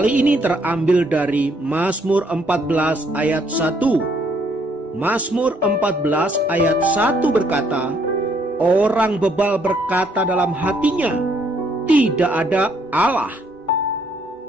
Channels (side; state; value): both; normal; correlation 0.69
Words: ini terambil dari Mazmur 14 ayat 1. Mazmur 14 ayat 1 berkata, orang bebal berkata dalam hatinya, tidak ada Allah.